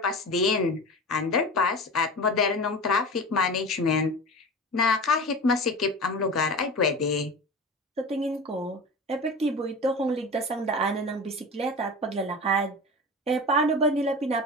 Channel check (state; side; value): normal; both; correlation 0.31